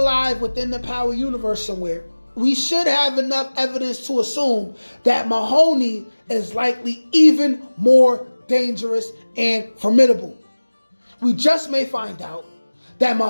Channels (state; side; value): inverted; both; correlation -1.00